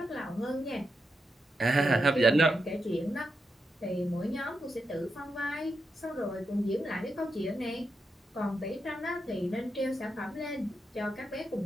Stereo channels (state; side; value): normal; both; correlation 0.85